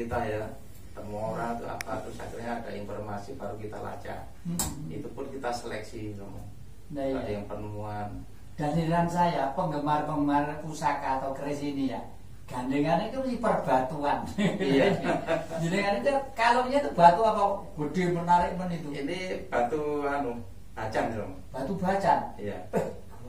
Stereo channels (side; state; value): both; identical; correlation 1.00